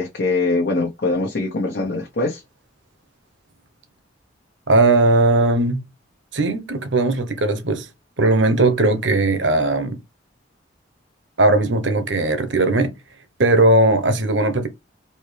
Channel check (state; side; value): normal; both; correlation -0.07